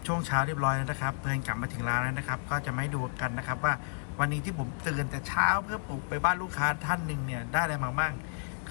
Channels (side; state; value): right; silent; digital silence